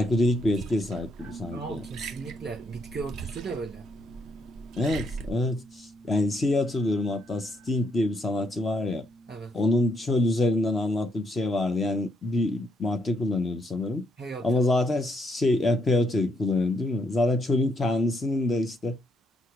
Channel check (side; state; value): both; normal; correlation 0.75